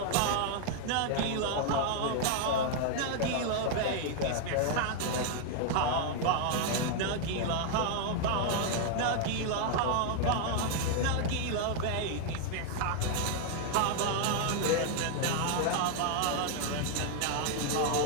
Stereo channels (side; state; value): both; different; correlation 0.00